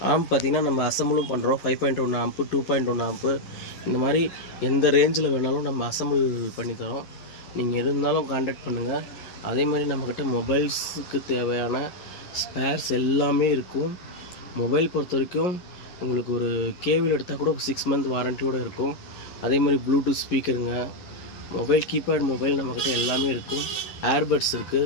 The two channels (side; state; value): right; late; 11 ms